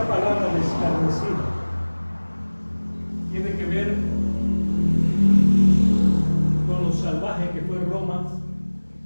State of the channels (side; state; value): both; inverted; correlation -1.00